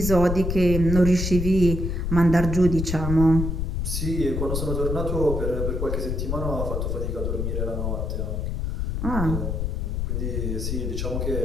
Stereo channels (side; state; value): left; noise; rumble, 1 dB below the sound